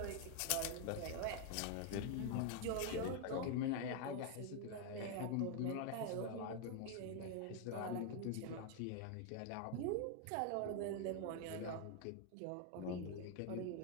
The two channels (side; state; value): both; different; correlation 0.01